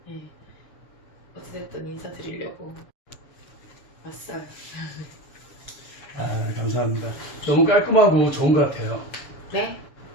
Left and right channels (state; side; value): late; right; 7.0 ms